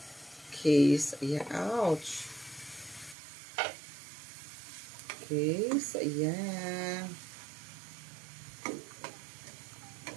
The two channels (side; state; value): left; drops out; at 3.2 s